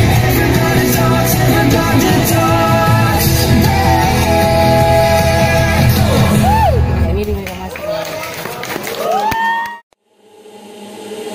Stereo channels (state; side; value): identical; both; correlation 1.00